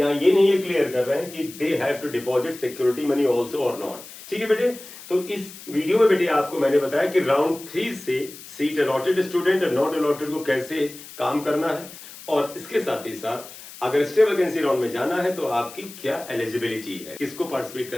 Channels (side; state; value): left; noise; hiss, 16 dB below the sound